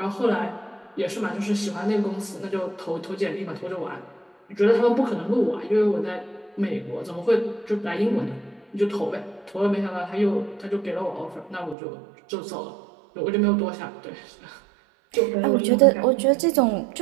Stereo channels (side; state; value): left; drops out; at 11.8 s